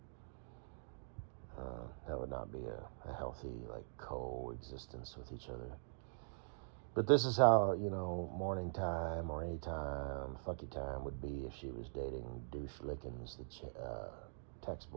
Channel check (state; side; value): silent; left; digital silence